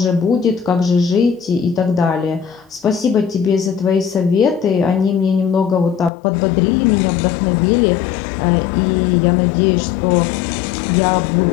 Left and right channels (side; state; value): right; drops out; at 6.1 s